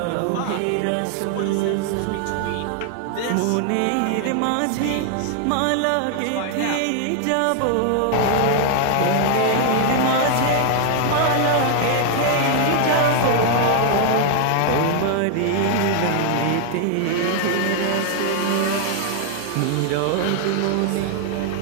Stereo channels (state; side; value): different; both; correlation 0.00